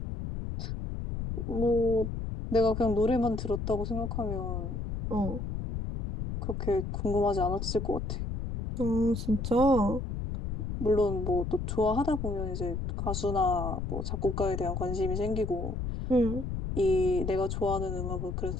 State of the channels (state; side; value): noise; left; rumble, 4 dB below the sound